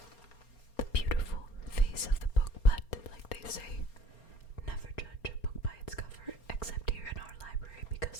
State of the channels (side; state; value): right; late; 4.3 ms